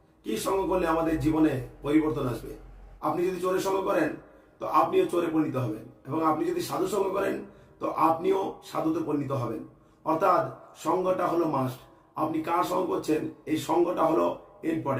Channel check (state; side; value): identical; both; correlation 1.00